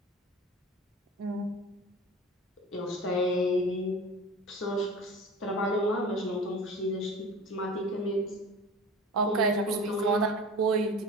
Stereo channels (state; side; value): normal; both; correlation 0.37